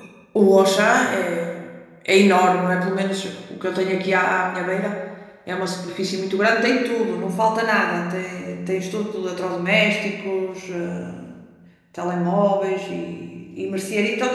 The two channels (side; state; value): both; identical; correlation 1.00